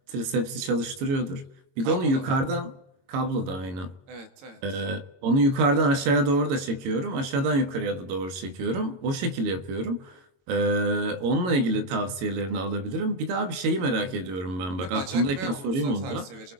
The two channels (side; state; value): left; late; 21 ms